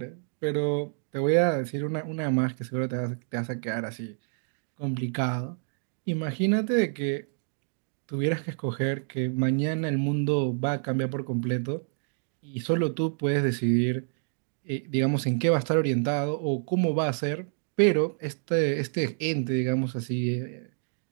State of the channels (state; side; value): silent; left; digital silence